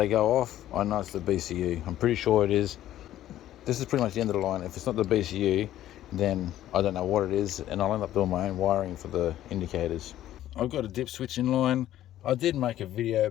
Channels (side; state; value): right; quieter; 12.9 dB